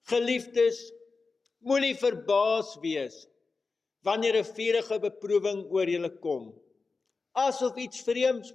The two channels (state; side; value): quieter; right; 4.2 dB